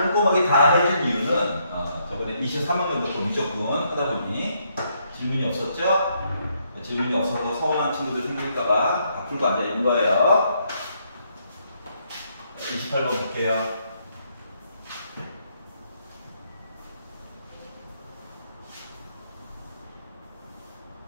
다 해준 이유는 저번에 23학년도 좀 무조건 하다 보니 질문이 없었죠? 질문이 없어서 서운한 친구들 생길까봐 다 풀고 앉아있는 거예요. 28번 볼게요.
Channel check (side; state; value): both; inverted; correlation -0.74